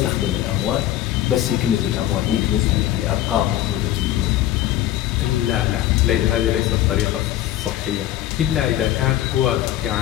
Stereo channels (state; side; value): quieter; right; 13.3 dB